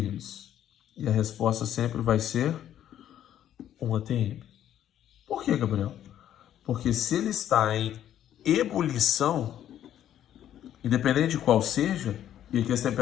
E a resposta sempre vai ser 1 atm. Por que, Gabriel? Porque se ele está em ebulição, independente de qual seja, e aqui as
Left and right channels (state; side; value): quieter; right; 11.1 dB